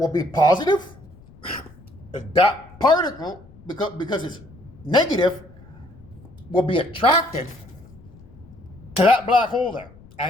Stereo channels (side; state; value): left; noise; rumble, 23 dB below the sound